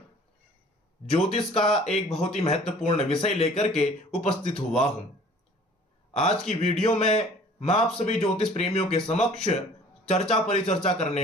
ज्योतिष का एक बहुत ही महत्वपूर्ण विषय लेकर के उपस्थित हुआ हूं। आज की वीडियो में मैं आप सभी ज्योतिष प्रेमियों के समक्ष चर्चा परिचर्चा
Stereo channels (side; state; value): both; normal; correlation 0.50